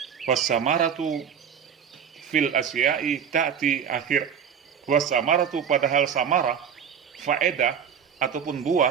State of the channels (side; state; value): left; quieter; 7.7 dB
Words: Wasamaratu fil asya'i ta'ti akhir. Wasamaratu, padahal samarah, faedah ataupun